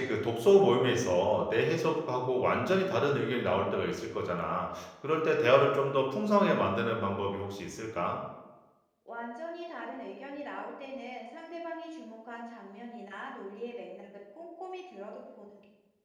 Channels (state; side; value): identical; both; correlation 1.00